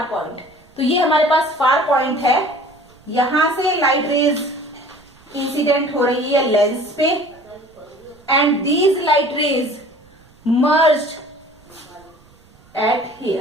point, तो ये हमारे पास फार पॉइंट है, यहां से लाइट रेज इंसिडेंट हो रही है लेंस पे, and these light rays merged eight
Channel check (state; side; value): noise; right; rumble, 29 dB below the sound